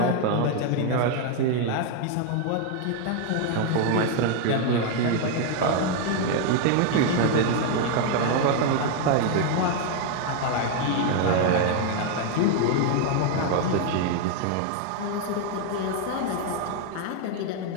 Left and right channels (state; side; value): different; both; correlation 0.00